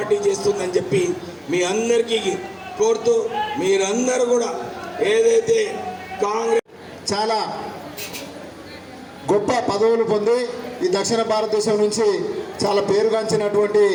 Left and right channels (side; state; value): both; identical; correlation 1.00